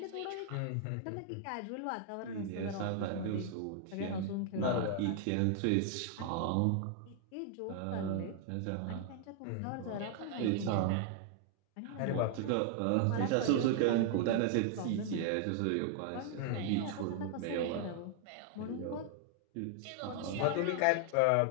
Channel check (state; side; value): different; both; correlation 0.00